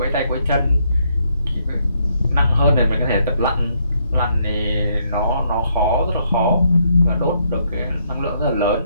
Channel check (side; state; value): both; inverted; correlation -0.73